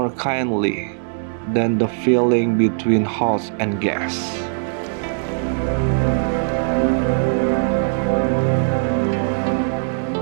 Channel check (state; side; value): silent; left; digital silence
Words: kindly than the feeling between host and guest?